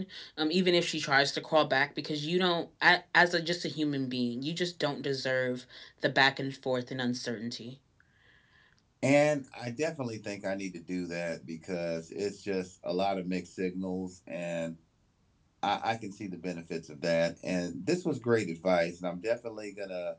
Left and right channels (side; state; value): both; identical; correlation 1.00